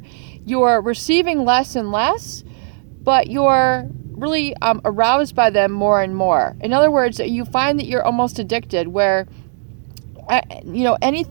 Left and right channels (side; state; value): left; silent; digital silence